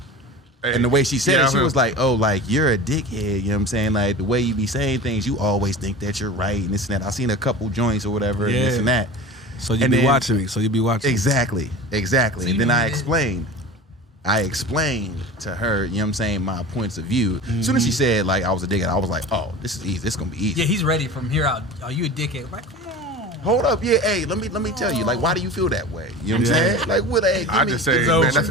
Hey, and the way she said yeah, it, she was like, oh, like, you're a dickhead. You know what I'm saying? Like, the way you be saying things, you always think that you're right and this and that. I seen a couple joints or whatever and this and that. So you be watching me. So you be watching Exactly. Exactly. So and then I explained to her, you know what I'm saying, my points of view. As soon as she said, like, I was a dickhead, I was like, oh, this is easy. This is going to be easy. Yeah, he's ready from here out. Are you a dickhead? Like, come on. Hold up, yeah, hey, let me tell you, like, why do you feel that way? You know what I'm saying? Like, what, hey, I just say, man,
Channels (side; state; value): both; normal; correlation 0.34